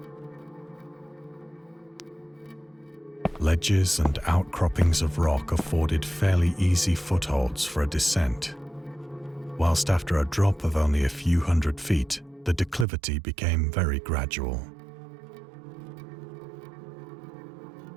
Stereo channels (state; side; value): drops out; left; at 12.9 s